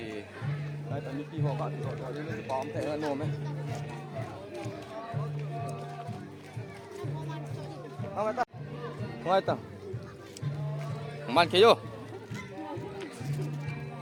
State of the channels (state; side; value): identical; both; correlation 1.00